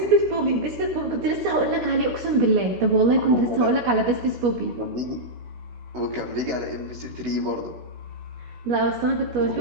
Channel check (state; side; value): late; left; 17 ms